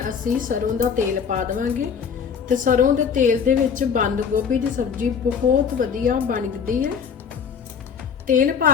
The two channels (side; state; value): right; quieter; 6.7 dB